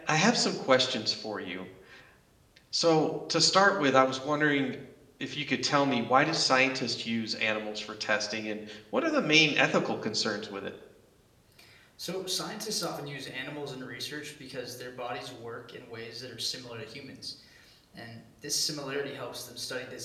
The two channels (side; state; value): both; identical; correlation 1.00